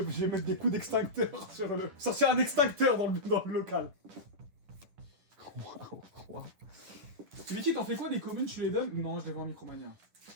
je vais mettre des coups d'extincteur sur le... Sortir un extincteur dans le local. Waouh. Vicky, t'en fais quoi des communes, tu les donnes? Non, je les vends en Micromania.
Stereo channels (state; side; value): late; left; 10 ms